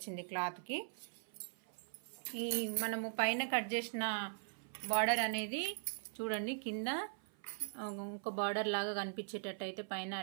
క్లాత్కి. ఈ మనము పైన కట్ చేసిన బార్డర్ అనేది చూడండి, కింద ఒక బార్డర్ లాగా కనిపించేటట్టు అయితే పైన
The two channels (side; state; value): left; silent; 51 dB below the other